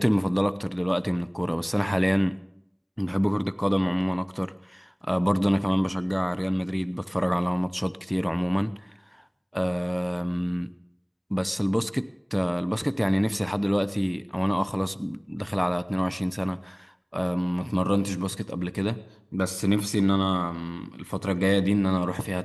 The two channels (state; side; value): identical; both; correlation 1.00